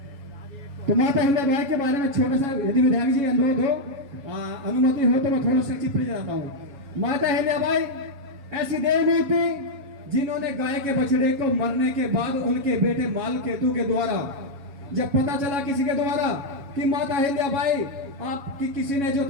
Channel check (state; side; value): late; left; 7.2 ms